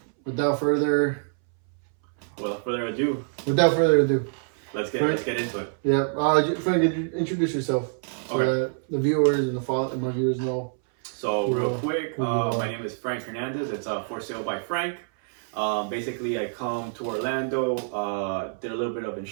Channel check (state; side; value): silent; left; 61 dB below the other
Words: without further Without further ado, let's get into it. Yeah, Frank, introduce yourself so that the viewers and my viewers know. So real quick, my name is Frank Hernandez. It's For Sale by Frank. Basically, I come to Orlando, did a little bit of